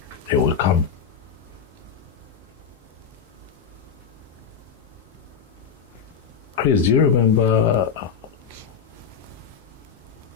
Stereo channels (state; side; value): quieter; right; 6.9 dB